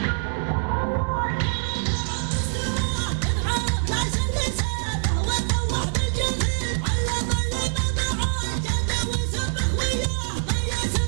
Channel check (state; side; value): silent; left; digital silence